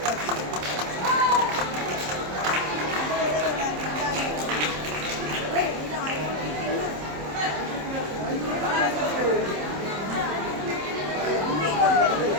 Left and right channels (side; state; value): left; late; 27 ms